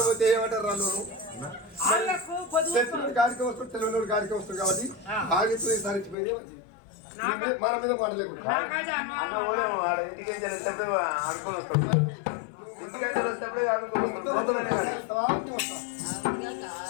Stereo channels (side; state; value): right; drops out; at 6.2 s